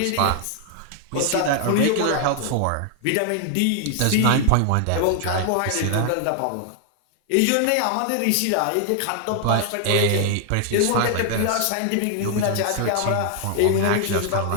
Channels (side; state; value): both; different; correlation 0.00